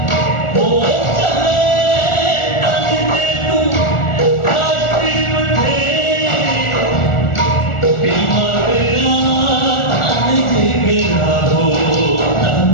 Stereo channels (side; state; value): right; late; 1.4 ms